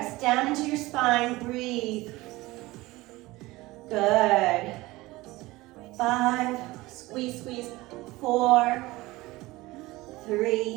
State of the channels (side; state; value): left; quieter; 19.9 dB